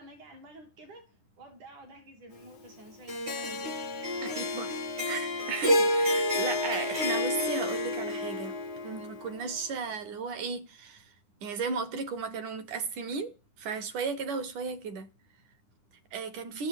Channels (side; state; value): left; late; 9.8 ms